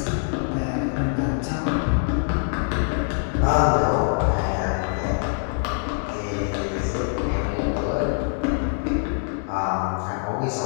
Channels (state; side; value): silent; right; 56 dB below the other